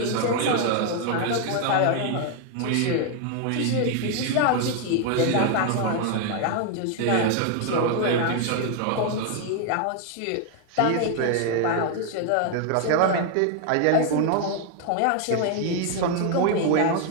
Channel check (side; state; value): both; different; correlation 0.00